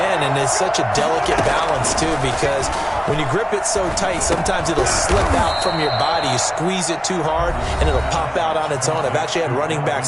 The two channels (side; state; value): both; identical; correlation 1.00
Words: and it's such a delicate balance, too, because when you grip it so tight, sometimes it'll slip out from your body. You squeeze it too hard, and it'll pop out on its own. I've actually had running